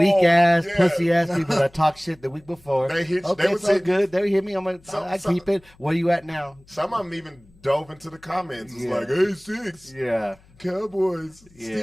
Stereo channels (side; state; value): left; noise; hum, 28 dB below the sound